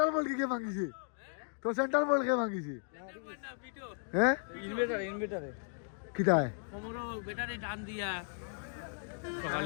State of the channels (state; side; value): silent; right; digital silence